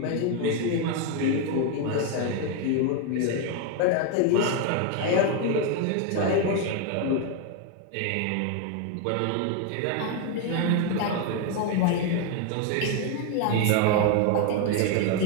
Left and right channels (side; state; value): both; different; correlation 0.01